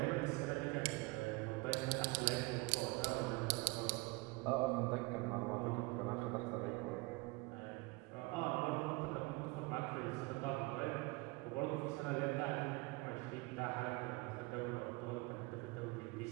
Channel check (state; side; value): quieter; left; 25.3 dB